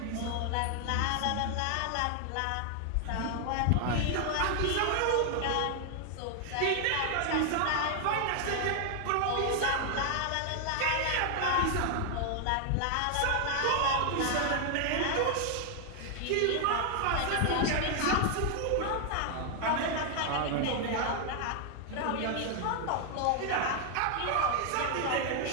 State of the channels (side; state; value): both; different; correlation 0.00